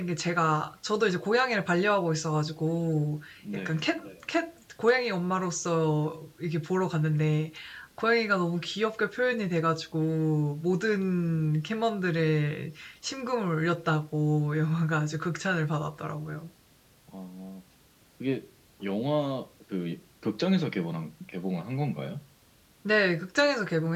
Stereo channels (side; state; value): both; identical; correlation 1.00